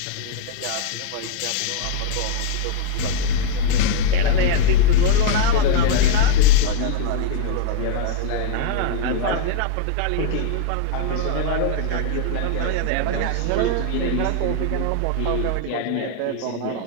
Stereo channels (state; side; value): different; both; correlation 0.00